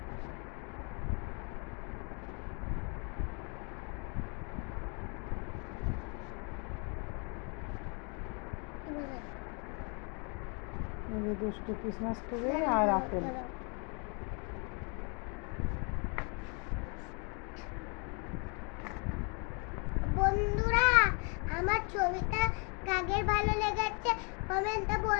এই যে দুষ্ট ক্রিসমাস ট্রি আর আপেল। বন্ধুরা আমার ছবিটা কাদের ভালো লেগেছে কমেন্টে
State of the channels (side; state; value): right; quieter; 35.5 dB